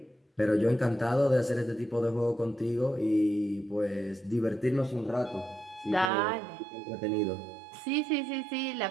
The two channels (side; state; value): left; drops out; at 6.1 s